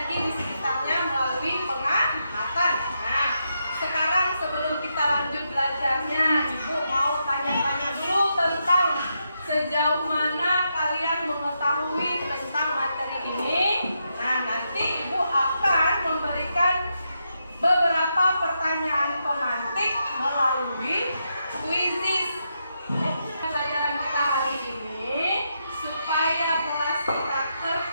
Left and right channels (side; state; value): both; inverted; correlation -0.83